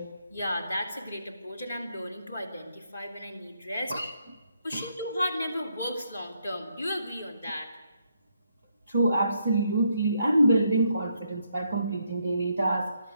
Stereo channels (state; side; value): inverted; both; correlation -0.76